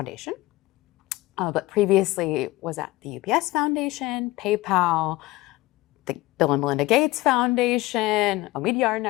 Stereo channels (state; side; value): quieter; right; 19.1 dB